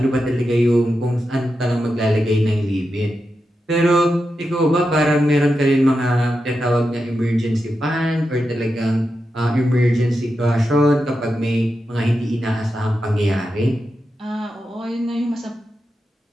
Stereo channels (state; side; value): normal; both; correlation 0.88